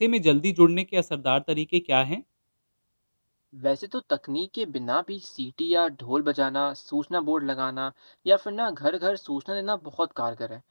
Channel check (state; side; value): inverted; both; correlation -1.00